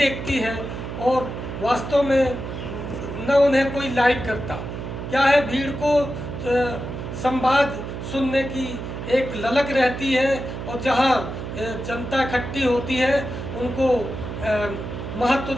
है और वास्तव में न उन्हें कोई लाइक करता। क्या है, भीड़ को संवाद सुनने की एक ललक रहती है और जहां जनता इकट्ठी होती है उनको महत्व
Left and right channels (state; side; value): noise; right; hum, 7 dB below the sound